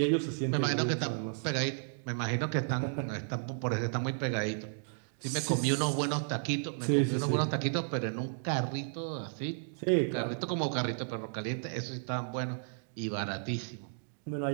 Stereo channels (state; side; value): silent; left; digital silence